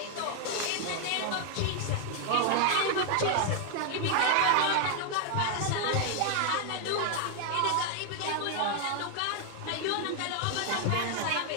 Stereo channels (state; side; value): different; both; correlation 0.00